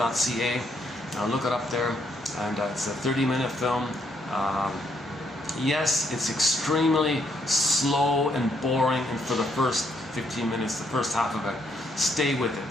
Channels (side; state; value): both; normal; correlation 0.73